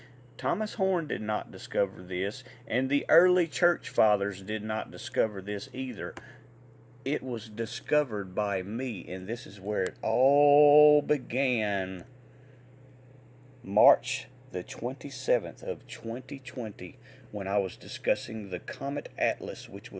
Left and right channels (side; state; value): both; identical; correlation 1.00